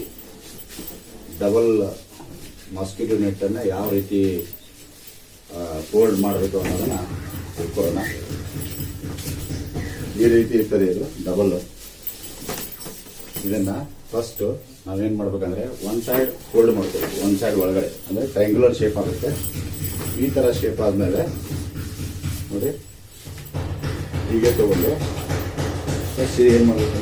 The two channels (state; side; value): identical; both; correlation 1.00